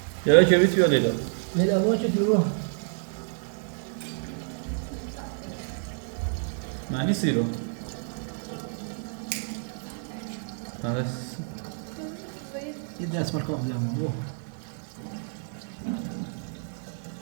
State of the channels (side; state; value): left; silent; digital silence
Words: چرا که بیت بیالیدم لیلا ما چه دیو معنی سیرو بس یه دست مرکب دیام